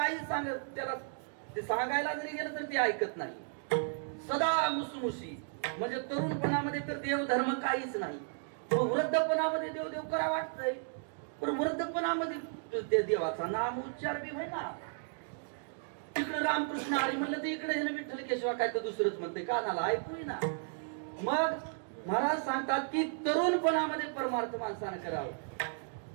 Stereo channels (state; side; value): silent; left; digital silence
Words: सांगत त्याला ते सांगायला जरी गेलं तर ते ऐकत नाही. सदा मुसमुशी. म्हणजे तरुणपणामध्ये तर देव धर्म काहीच नाही. वृद्धपणामध्ये देव देव करा वाटतंय पण वृद्धपणामध्ये ते देवाचा नाम उच्चार बी होईना. तिकडे रामकृष्ण हरी म्हणलं तर इकडे विठ्ठल केशवा काय तर दुसरंच म्हणते कानाला ऐकू ना. मग महाराज सांगतात की तरुणपणामध्ये परमार्थ माणसानं करावं.